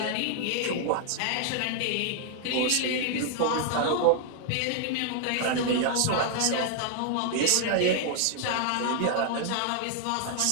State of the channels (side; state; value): both; different; correlation 0.00